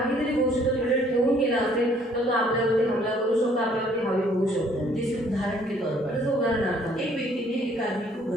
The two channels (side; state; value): both; normal; correlation 0.61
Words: गोष्ट तो तिकडे ठेवून गेला असेल तर तो आपल्यावरती हमला करू शकतो, आपल्यावरती हवी होऊ शकतो. जैसे उदाहरण के तौर पर, जसं उदाहरणार्थ एक व्यक्ति ने एक आदमी को